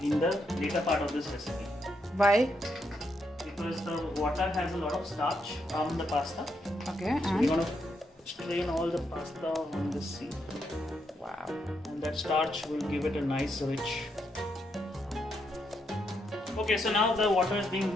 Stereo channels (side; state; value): both; normal; correlation 0.79